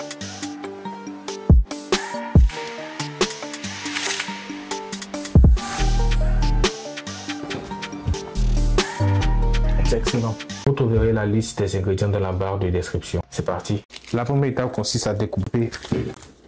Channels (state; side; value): identical; both; correlation 1.00